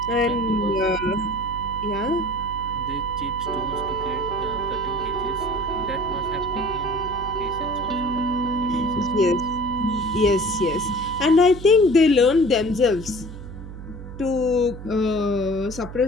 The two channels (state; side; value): noise; right; hum, 12 dB below the sound